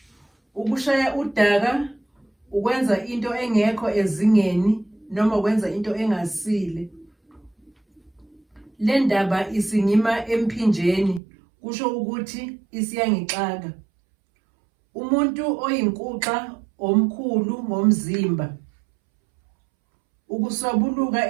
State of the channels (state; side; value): drops out; left; at 11.2 s